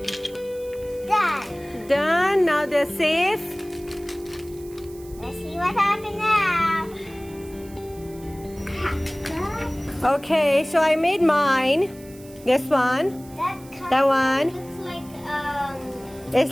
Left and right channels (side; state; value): right; noise; hiss, 22 dB below the sound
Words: Done. Done. Now they're safe. Let's see what happened now. Okay, so I made mine. This one. that kind That one. looks like It's